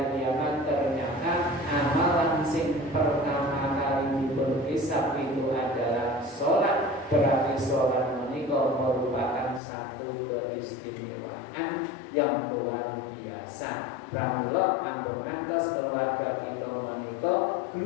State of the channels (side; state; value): right; drops out; at 9.6 s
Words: kiamat ternyata amalan sing pertama kali diberhisab itu adalah sholat. Berarti sholat menika merupakan satu keistimewaan yang luar biasa. Pramila ampun ngantos keluarga kita menika